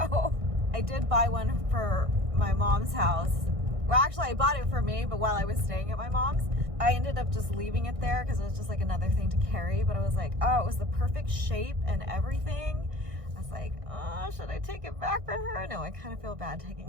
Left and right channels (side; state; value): left; late; 1.6 ms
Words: I did buy one for my mom's house. Well, actually, I bought it for me, but while I was staying at my mom's, I ended up just leaving it there because it was just another thing to carry. But I was like, oh, it was the perfect shape and everything. I was like, oh, should I take it back for her? No, I kind of feel bad taking